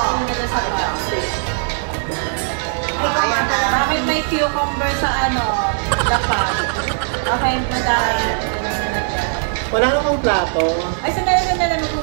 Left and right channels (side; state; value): left; silent; digital silence